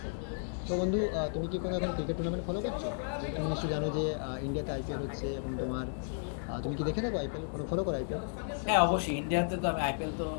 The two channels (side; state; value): right; silent; digital silence